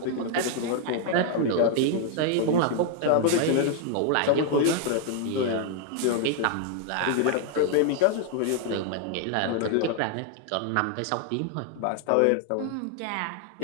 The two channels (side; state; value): both; different; correlation 0.00